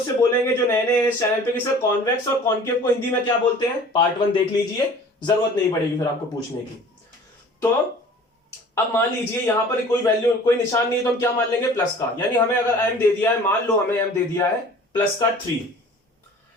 बोलेंगे जो नए नए इस चैनल पे कि सर कॉन्वेक्स और कॉनकेव को हिंदी में क्या बोलते हैं। पार्ट 1 देख लीजिए, जरूरत नहीं पड़ेगी फिर आपको पूछने की। तो अब मान लीजिए यहां पर कोई वैल्यू, कोई निशान नहीं है, तो हम क्या मान लेंगे, प्लस का। यानी हमें अगर m दे दिया है, मान लो हमें m दे दिया है प्लस का 3,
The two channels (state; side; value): normal; both; correlation 0.46